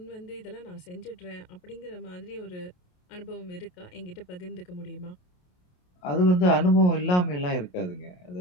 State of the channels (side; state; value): right; late; 28 ms